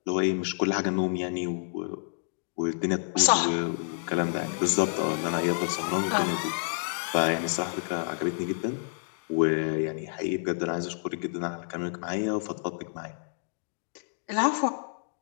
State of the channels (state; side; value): silent; right; digital silence